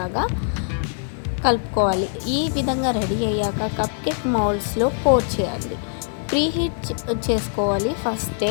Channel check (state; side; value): silent; right; 64 dB below the other